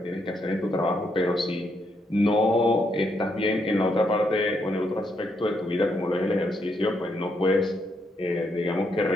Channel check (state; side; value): normal; both; correlation 0.77